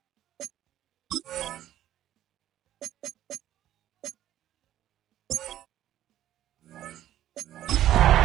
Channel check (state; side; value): quieter; left; 12.7 dB